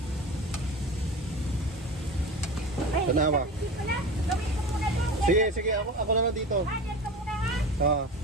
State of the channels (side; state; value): both; normal; correlation 0.32